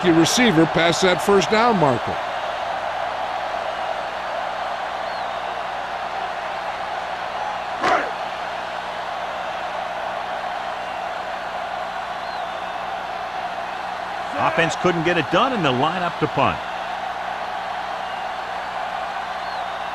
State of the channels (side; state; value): both; identical; correlation 1.00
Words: your receiver past that first down marker. Offense couldn't get it done, and they'll line up to punt.